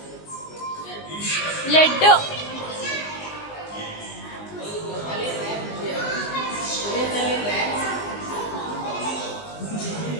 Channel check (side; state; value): right; late; 19 ms